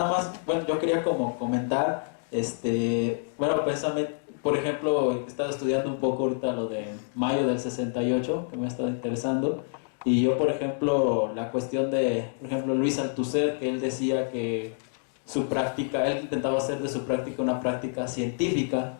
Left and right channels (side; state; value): right; silent; 60 dB below the other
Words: más, bueno, yo quería como comentar, bueno, precisamente, por ejemplo, he estado estudiando un poco ahorita lo de mayo del 68, que me ha estado interesando, y yo, por ejemplo, la cuestión de, por ejemplo, Luis Althusser, que él decía que su práctica, él intentaba hacer de su práctica una práctica científica